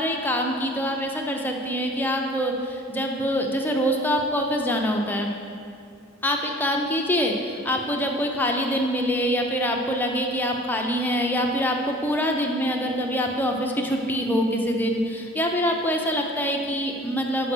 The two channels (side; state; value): both; normal; correlation 0.47